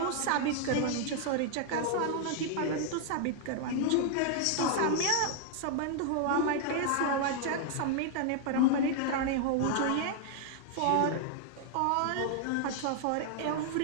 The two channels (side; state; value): both; different; correlation 0.00